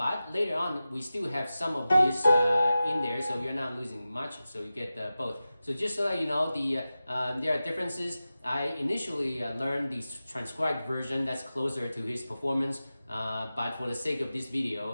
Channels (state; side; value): inverted; both; correlation -0.94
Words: later on, we still have some of this in there, so you're not losing much. So you get both. So just so that you know, there are differences. I initially learned the transcribed version that's closer to his performance, but for the sake of this